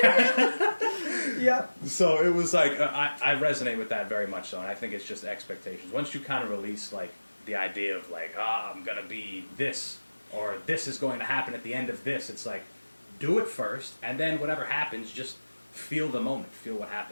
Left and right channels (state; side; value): inverted; both; correlation -1.00